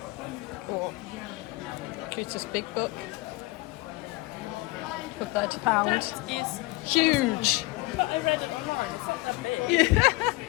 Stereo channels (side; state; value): right; quieter; 22.5 dB